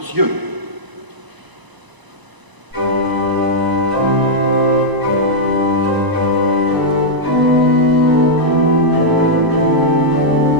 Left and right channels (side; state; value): left; late; 1.0 ms